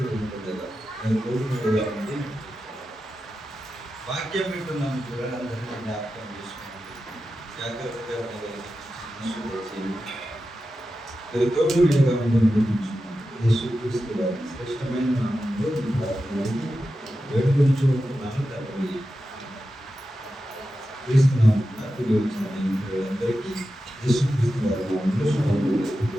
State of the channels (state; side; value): normal; both; correlation 0.91